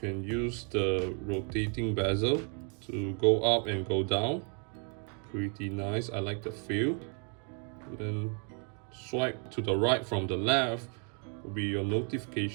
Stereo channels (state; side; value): quieter; left; 39.2 dB